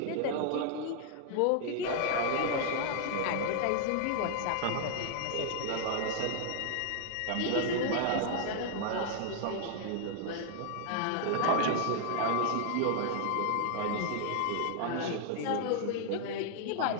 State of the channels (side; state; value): both; different; correlation 0.00